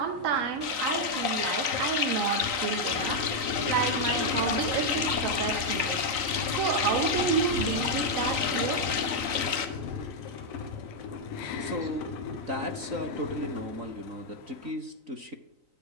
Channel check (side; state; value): left; late; 3.9 ms